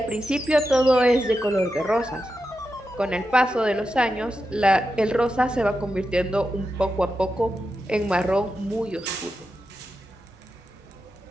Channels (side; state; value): both; normal; correlation 0.89